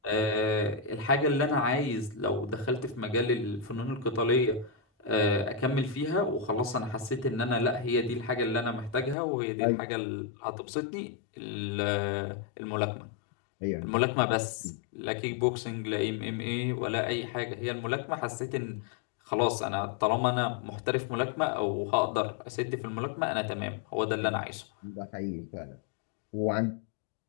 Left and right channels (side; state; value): right; drops out; at 9.2 s